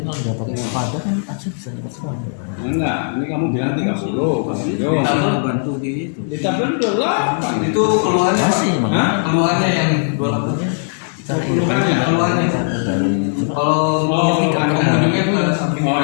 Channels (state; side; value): silent; right; 67 dB below the other